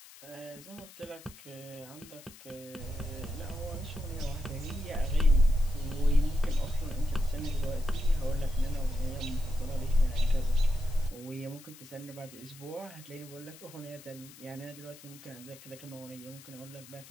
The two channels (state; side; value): noise; left; hiss, 19 dB below the sound